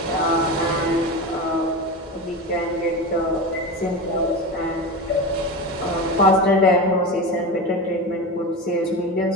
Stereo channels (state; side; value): normal; both; correlation 0.24